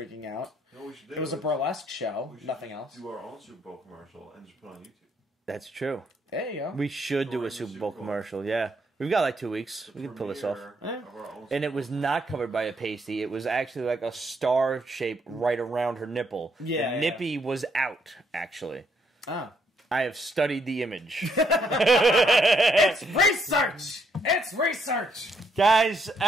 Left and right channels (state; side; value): normal; both; correlation 0.73